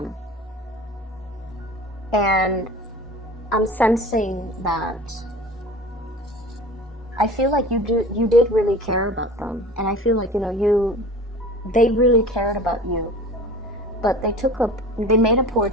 And I'm sensing that I feel like you did really care about them. And I feel like, you know, they really cared about you. But they made a poor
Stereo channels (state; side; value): normal; both; correlation 0.39